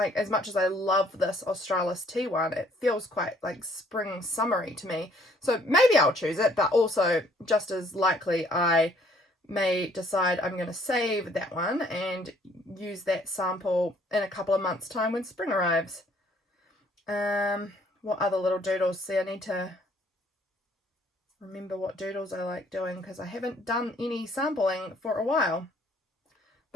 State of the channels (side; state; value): both; normal; correlation 0.62